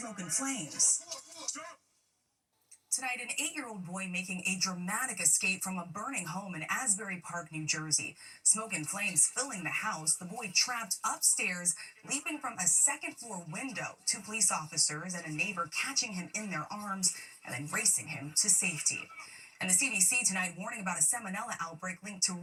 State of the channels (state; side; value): identical; both; correlation 1.00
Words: and flames. Tonight, an 8-year-old boy making a dramatic escape from a burning home in Asbury Park, New Jersey. Smoke and flames filling the house. The boy trapped upstairs, leaping from a second-floor window. 2 police officers and a neighbor catching him in their arms and then racing him to safety. And the CDC tonight warning about a salmonella outbreak linked to